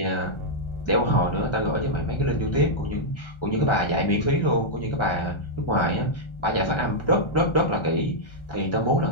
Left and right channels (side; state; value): right; late; 1.4 ms